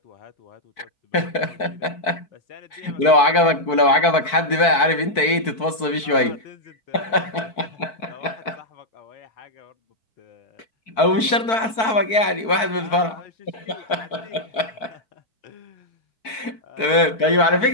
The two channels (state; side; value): late; right; 4.5 ms